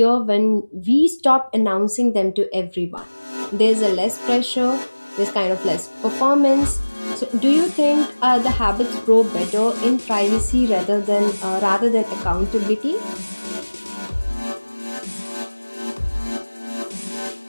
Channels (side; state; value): both; inverted; correlation -1.00